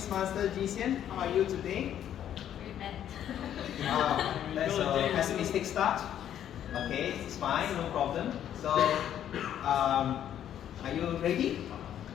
Zhi Jun. How are you today? Very bad. Wow, that's a pessimistic start. Okay, it's fine, no problem. So, are you ready?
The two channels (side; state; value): right; quieter; 10.4 dB